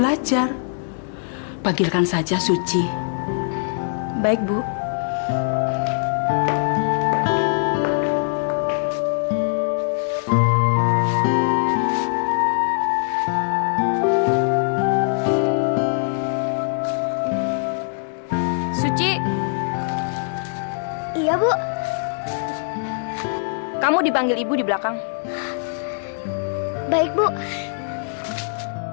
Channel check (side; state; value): right; silent; digital silence